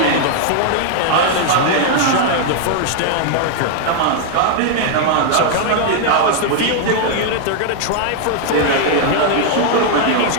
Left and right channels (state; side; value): different; both; correlation 0.00